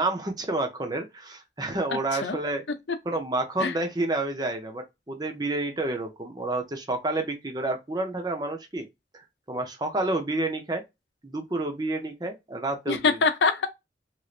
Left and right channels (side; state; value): both; normal; correlation 0.28